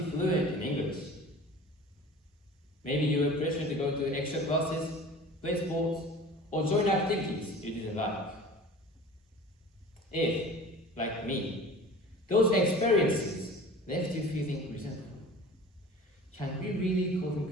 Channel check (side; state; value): both; normal; correlation 0.41